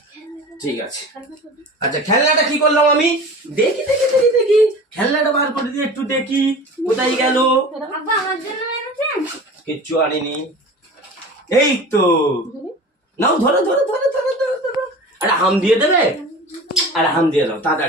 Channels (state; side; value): normal; both; correlation 0.37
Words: ঠিক আছে, আচ্ছা খেলনাটা কি করলাম আমি? দেখি দেখি দেখি দেখি খেলনাটা বার করে দিয়ে একটু দেখি কোথায় গেল। কিচ্ছু আনিনি। এই তো নাও, ধরো ধরো ধরো ধরো ধরো ধরো। আরে হাম দিয়ে দেবে? আরে হাম দিয়ে দাও